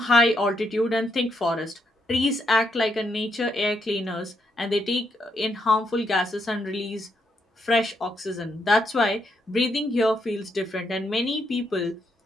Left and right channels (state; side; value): normal; both; correlation 0.77